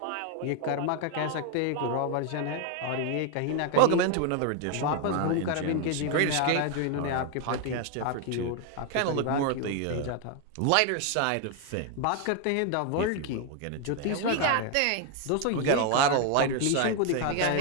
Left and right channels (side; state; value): both; different; correlation 0.01